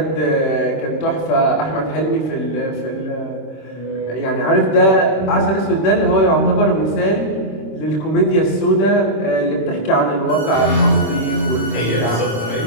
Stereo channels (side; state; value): right; late; 26 ms